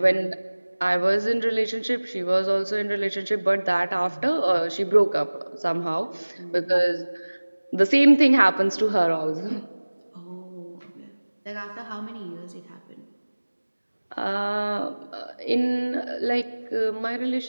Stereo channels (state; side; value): inverted; both; correlation -1.00